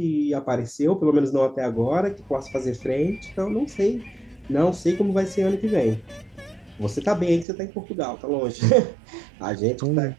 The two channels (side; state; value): left; drops out; at 7.5 s